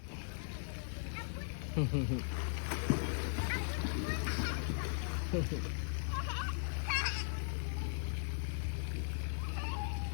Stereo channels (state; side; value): silent; right; digital silence